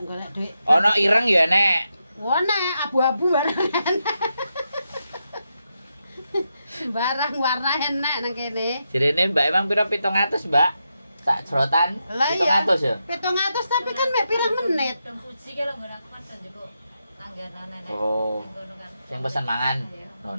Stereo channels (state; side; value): inverted; both; correlation -0.85